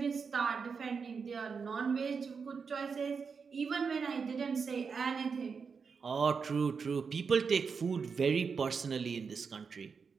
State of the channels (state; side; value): quieter; left; 5.6 dB